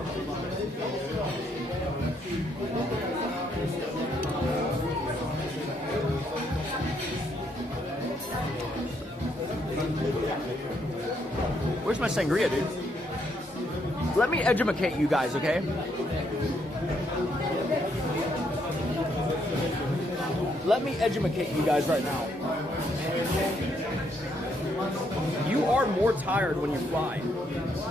Where's my sangria, dude? Let me educate you guys, okay? Let me educate you guys right now. You are more tired when you fly.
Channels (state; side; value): normal; both; correlation 0.74